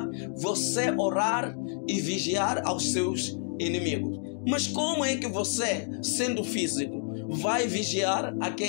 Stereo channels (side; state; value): right; silent; 59 dB below the other